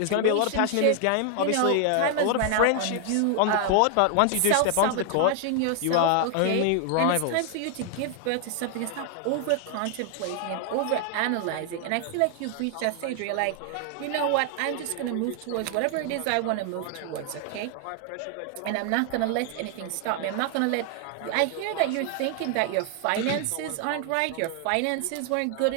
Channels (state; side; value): different; both; correlation 0.00